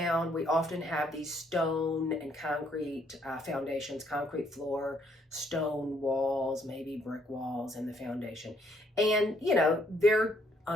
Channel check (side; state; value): both; normal; correlation 0.69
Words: we often have these stone and concrete foundations, concrete floor, stone walls, maybe brick walls in the foundation. And, you know, they're